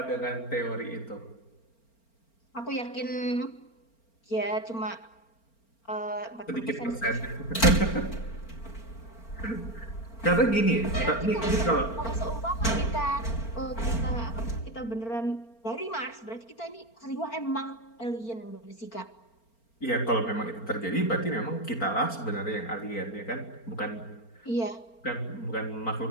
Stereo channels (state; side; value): late; right; 4.4 ms